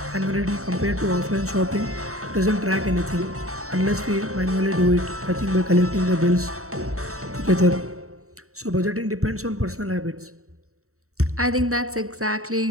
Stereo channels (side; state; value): left; late; 0.64 ms